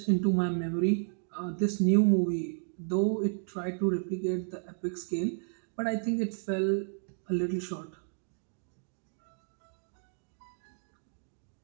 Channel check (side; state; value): left; silent; digital silence